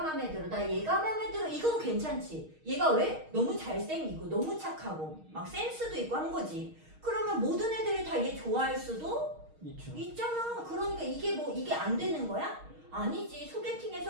마음에 들어. 나 얘가 마음에 들어. 이건 괜찮지. 얘가 왜? 너무 잘생기고 너무 착하고 막 센스도 있고 한 거지. 그러면 모든 애들이 다 얘 좋아할 수도 있죠. 있잖아. 그러니까 이게 안 되는 거야? 아니지.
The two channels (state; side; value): late; left; 6.4 ms